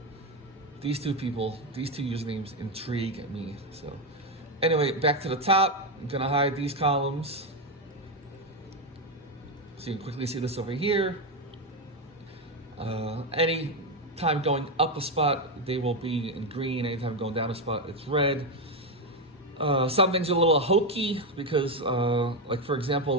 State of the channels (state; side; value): normal; both; correlation 0.08